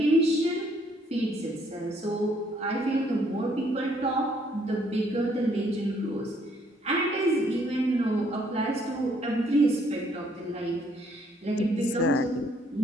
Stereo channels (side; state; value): both; normal; correlation 0.67